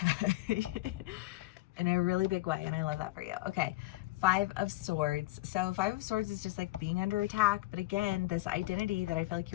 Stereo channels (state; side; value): quieter; right; 19.3 dB